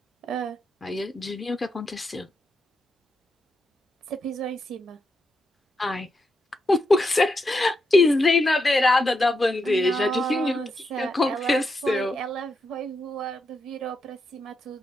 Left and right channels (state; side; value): normal; both; correlation 0.83